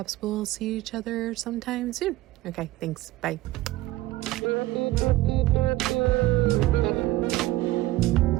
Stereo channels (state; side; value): quieter; left; 17.2 dB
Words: we'll see each other sometime soon. Okay, thanks. Bye.